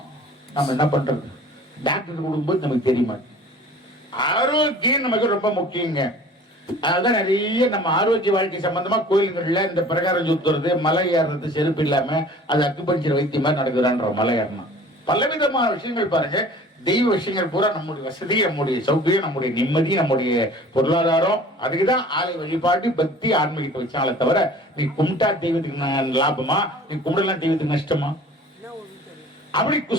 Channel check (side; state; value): both; normal; correlation 0.46